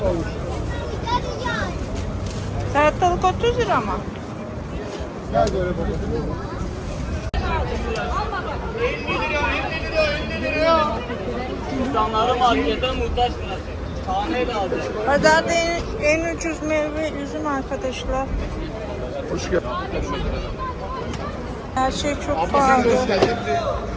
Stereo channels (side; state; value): both; identical; correlation 1.00